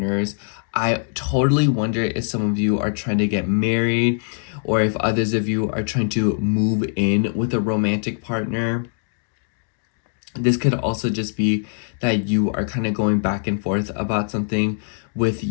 I totally wonder if some of you are trying to get married, or if others of you are trying to move in with a romantic partner. This could also just be that you are kind of going back and forth about something with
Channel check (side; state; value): right; silent; digital silence